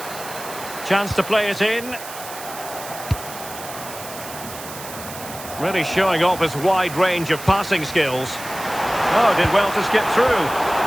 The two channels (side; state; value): right; noise; hiss, 12 dB below the sound